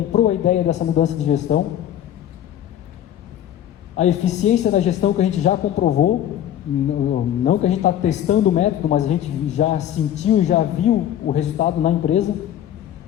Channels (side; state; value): right; quieter; 11.1 dB